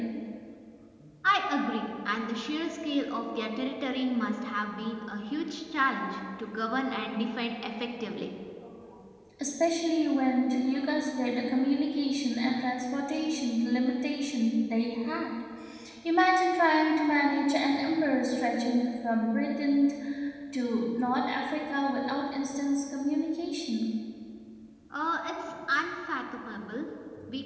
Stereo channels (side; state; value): both; identical; correlation 1.00